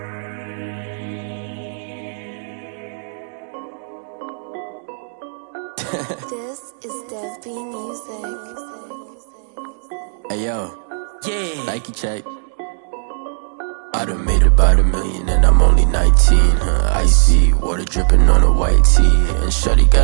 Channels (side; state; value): left; silent; digital silence